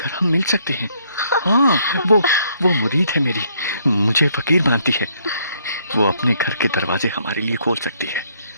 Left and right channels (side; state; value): both; inverted; correlation -0.68